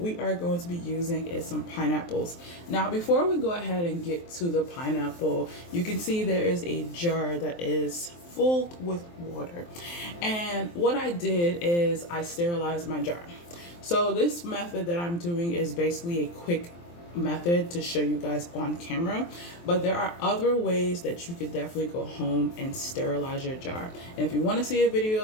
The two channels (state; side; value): late; right; 23 ms